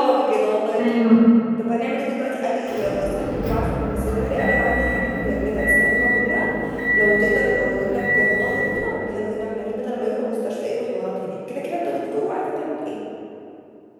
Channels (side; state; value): both; identical; correlation 1.00